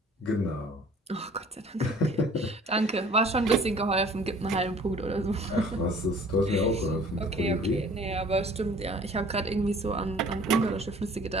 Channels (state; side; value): normal; both; correlation 0.51